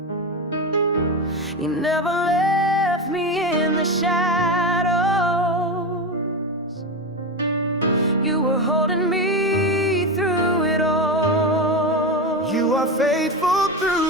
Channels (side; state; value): both; normal; correlation 0.18